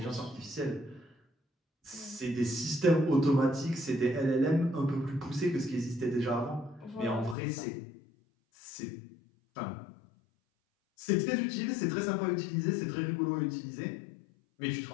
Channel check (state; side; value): drops out; right; at 7.4 s